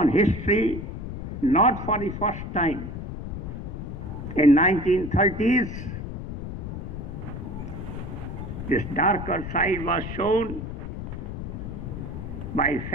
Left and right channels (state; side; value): noise; left; rumble, 7 dB below the sound